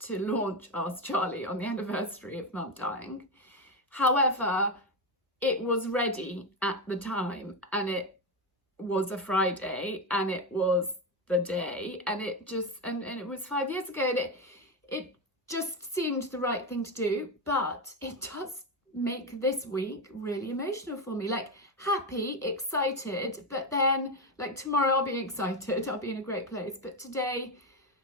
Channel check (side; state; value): both; normal; correlation 0.13